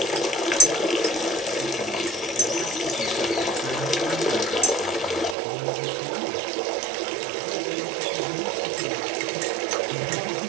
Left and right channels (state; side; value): drops out; left; at 5.4 s